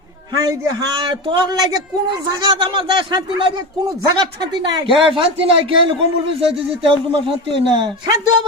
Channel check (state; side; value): normal; both; correlation 0.22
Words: হাই রে হাই তোর লাগে কোন জায়গা আমার যায় শান্তি নাই রে কোন জায়গা শান্তি নাই কে শান্তি নাই কে কম্বল বিছাইতে যে তেল তোমার শান্তি হয় না শান্তি